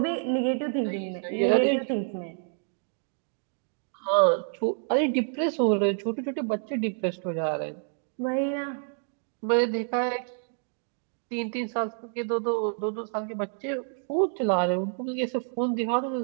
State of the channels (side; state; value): left; silent; 59 dB below the other